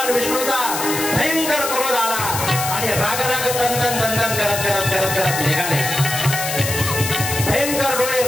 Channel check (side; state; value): left; noise; hiss, 4 dB below the sound